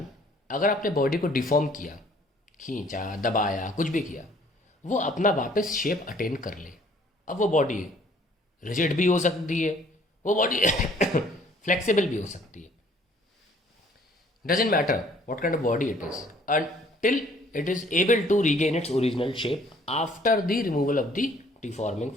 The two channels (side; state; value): both; normal; correlation 0.59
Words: अगर आपने बॉडी को डिफॉर्म किया, खींचा, दबाया, कुछ भी किया, वो अपना वापस शेप अटेन कर ले। अब वो बॉडी रिजिड भी हो सकती है, वो बॉडी फ्लेक्सिबल भी हो सकती है। Doesn't matter what kind of body it is until it is able to regain its original shape after the removal of the deforming